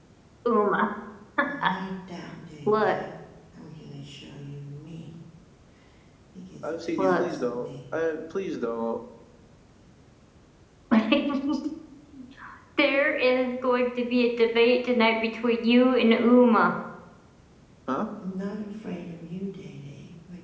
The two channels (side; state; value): both; identical; correlation 1.00